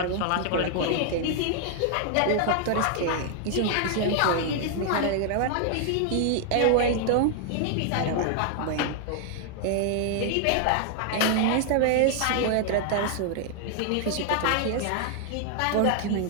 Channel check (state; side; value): different; both; correlation 0.00